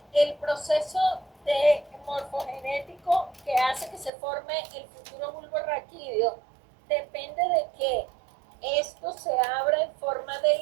el proceso de morfogenético que hace que se forme el futuro bulbo raquídeo depende de que esto se abra en forma de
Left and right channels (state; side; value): drops out; left; at 4.1 s